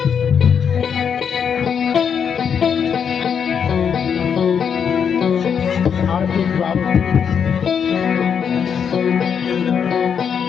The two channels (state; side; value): quieter; right; 7.3 dB